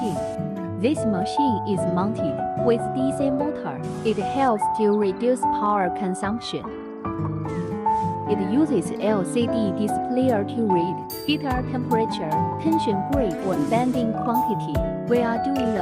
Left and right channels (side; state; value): both; identical; correlation 1.00